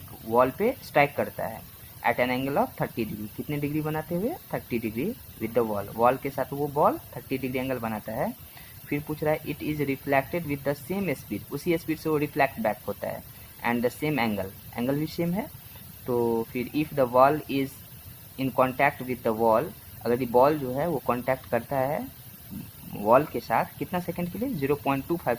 वॉल पे स्ट्राइक करता है at an angle of 30 degree, कितने डिग्री बनाते हुए 30 degree with the wall, wall के साथ वो बॉल 30 डिग्री एंगल बनाता है। फिर पूछ रहा है it is reflected with the same speed, उसी स्पीड से वो रिफ्लेक्ट बैक होता है, and the same angle, angle भी सेम है। तो फिर if the wall is in contact with the wall, अगर ये बॉल जो है वो कॉन्टैक्ट करता है वॉल के साथ कितना सेकंड के लिए, 0.25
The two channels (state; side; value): identical; both; correlation 1.00